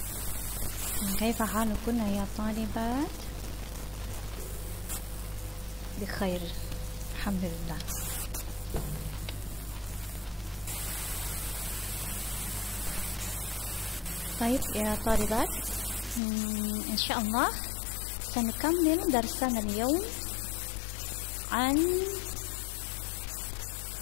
كيف حالكن يا طالبات؟ بخير الحمد لله. طيب يا طالبات، إن شاء الله سنكمل درسنا اليوم عن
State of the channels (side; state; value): right; drops out; at 16.2 s